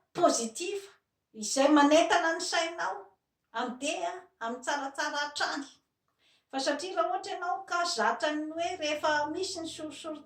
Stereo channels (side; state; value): both; identical; correlation 1.00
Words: pozitiva izay manentana ny sainao andeha amin'ny tsaratsara hatrany. Fa satria raha ohatra ianao ka zatra ny hoe rehefa misy ny